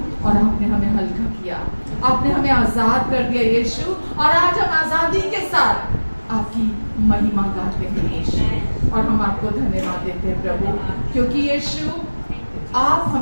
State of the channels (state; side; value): inverted; both; correlation -1.00